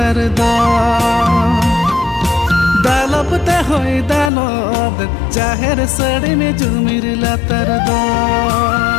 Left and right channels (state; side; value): drops out; right; at 4.3 s